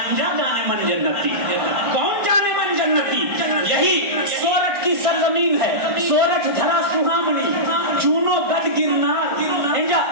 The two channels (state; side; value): late; left; 1.5 ms